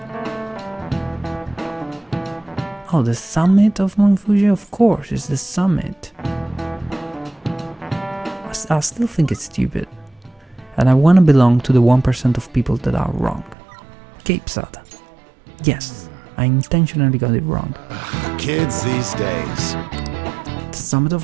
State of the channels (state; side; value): drops out; left; at 13.6 s